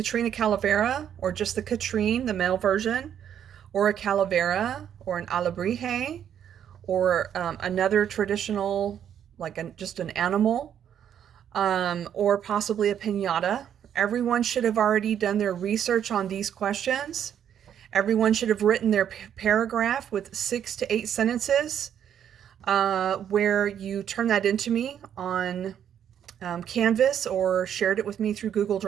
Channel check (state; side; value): quieter; left; 9.3 dB